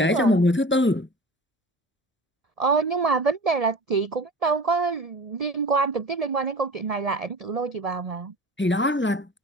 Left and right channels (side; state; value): both; normal; correlation 0.38